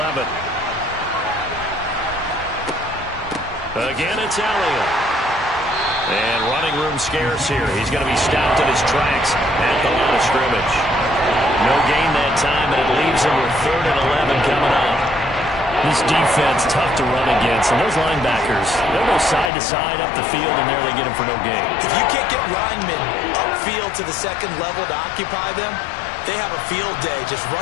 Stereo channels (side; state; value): right; drops out; at 19.5 s